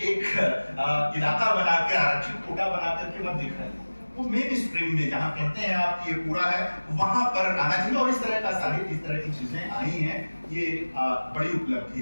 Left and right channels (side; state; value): both; inverted; correlation -1.00